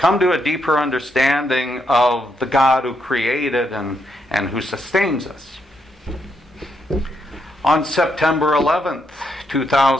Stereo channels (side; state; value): both; normal; correlation 0.79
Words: to a deeper understanding of the God who created and who sustains us. On September 11th,